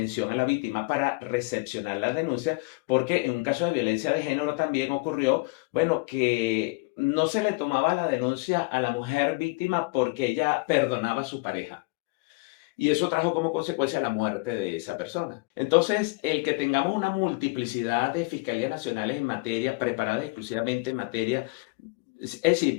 a la víctima para recepcionar la denuncia, porque en un caso de violencia de género también ocurrió, bueno, que no se le tomaba la denuncia a la mujer víctima porque ella perdonaba a su pareja. Y eso trajo como consecuencia la muerte de esa persona. Entonces, el que tengamos una multiplicidad de fiscalías nacionales en materia, preparadas exclusivamente en materia Es decir,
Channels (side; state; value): right; quieter; 27.0 dB